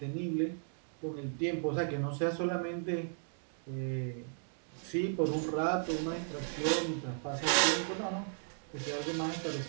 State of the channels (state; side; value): silent; left; digital silence